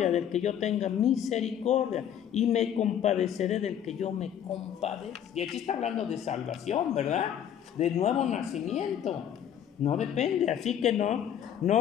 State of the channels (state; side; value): quieter; right; 9.6 dB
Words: del que yo tenga misericordia y me compadeceré del que yo me compadezca. Y aquí está hablando de salvación, ¿verdad? De nuevo nacimiento. No depende, así que no